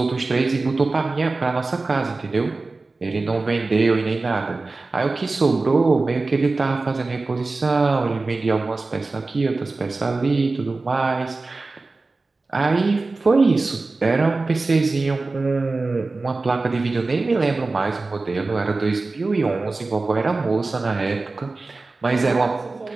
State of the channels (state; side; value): quieter; left; 3.5 dB